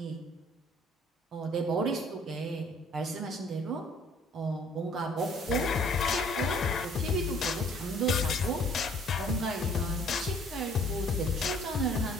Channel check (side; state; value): both; normal; correlation 0.57